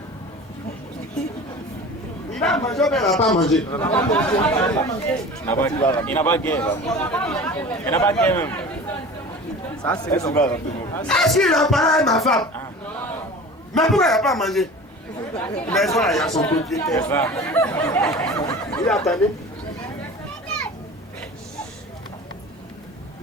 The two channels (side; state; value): both; normal; correlation 0.38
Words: Il a mangé ou bien il n'a pas mangé? Il n'a pas gagné. Il n'a pas gagné même. Ça, c'est le savoir. Est-ce qu'il a parlé avec ma femme? Mais pourquoi il n'a pas mangé? Mais ça, il y a son propriétaire. Il attendait.